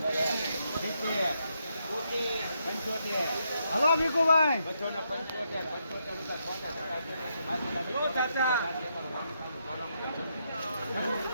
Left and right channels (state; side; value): inverted; both; correlation -0.79